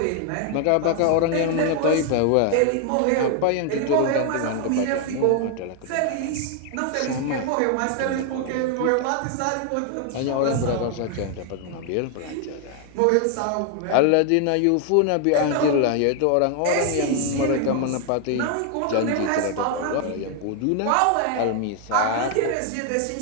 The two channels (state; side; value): different; both; correlation 0.00